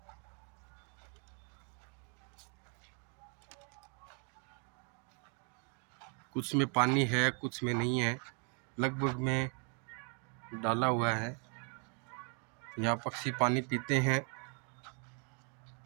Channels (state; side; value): quieter; left; 38.2 dB